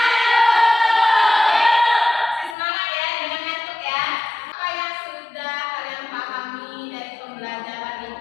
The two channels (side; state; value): right; drops out; at 2.6 s